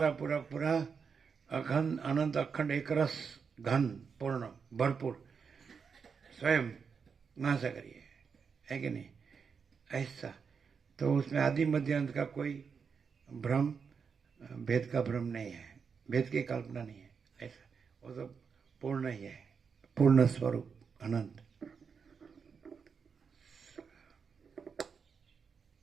पूरा पूरा अखंड अनंत अखंड एक रस घन पूर्ण भरपूर स्वयं महासागर है कि नहीं, ऐसा। तो उसमें आदि मध्य अंत का कोई भ्रम, भेद का भ्रम नहीं है, भेद की कल्पना नहीं है, ऐसा। वो तो पूर्ण ही है, पूर्ण स्वरूप अनंत।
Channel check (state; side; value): quieter; left; 6.0 dB